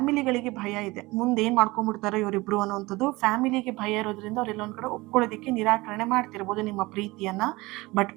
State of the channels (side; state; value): left; quieter; 21.6 dB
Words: ಭಯ ಇದೆ, ಮುಂದೆ ಏನು ಮಾಡ್ಕೊಂಡ್ಬಿಡ್ತಾರೆ ಇವರಿಬ್ರು ಅನ್ನೋವಂಥದ್ದು. ಫ್ಯಾಮಿಲಿಗೆ ಭಯ ಇರೋದ್ರಿಂದ ಅವ್ರು ಎಲ್ಲೊಂದು ಕಡೆ ಒಪ್ಕೊಳ್ಳೋದಕ್ಕೆ ನಿರಾಕರಣೆ ಮಾಡ್ತಿರ್ಬೋದು ನಿಮ್ಮ ಪ್ರೀತಿಯನ್ನು. ಬಟ್